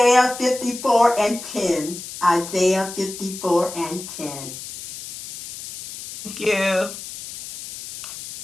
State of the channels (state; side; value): noise; left; hiss, 11 dB below the sound